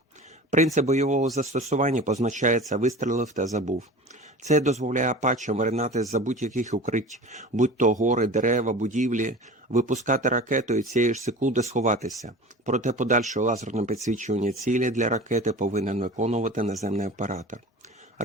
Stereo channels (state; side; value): normal; both; correlation 0.37